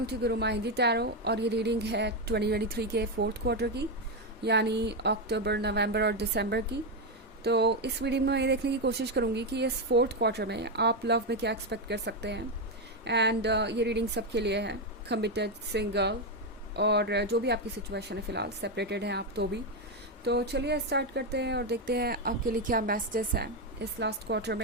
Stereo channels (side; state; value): both; normal; correlation 0.07